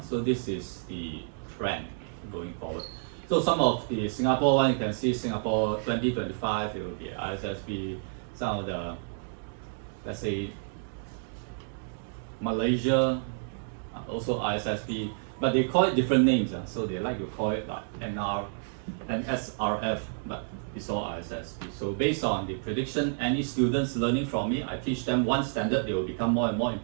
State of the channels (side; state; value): left; silent; digital silence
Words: So this is the trend going forward. So some of the Singapore one, you can see Singapore 2025, it will be ISSB. Some of the, let's say, Malaysia, also ISSB, but they call it different names. So they like to call it like NR and SRF, but it's all ISSB. So based on the prediction, any students learning from me, I teach them one standard, they will become more and more